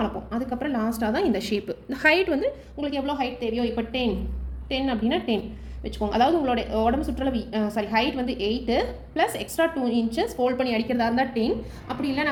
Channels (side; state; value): both; identical; correlation 1.00